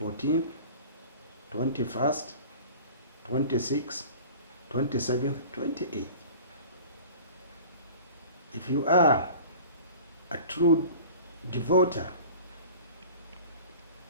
21st, 26th, 27th, 28th. If you are a true devoter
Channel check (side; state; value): both; inverted; correlation -0.42